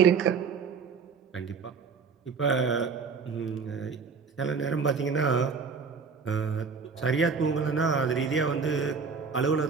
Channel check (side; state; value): left; quieter; 5.4 dB